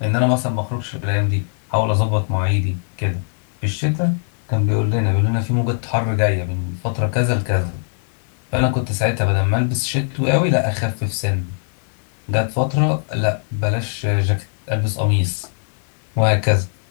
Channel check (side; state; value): right; silent; 65 dB below the other